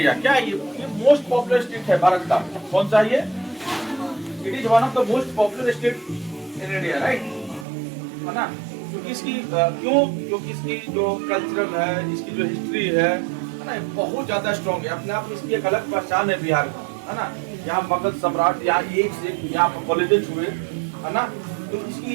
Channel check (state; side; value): drops out; left; at 7.7 s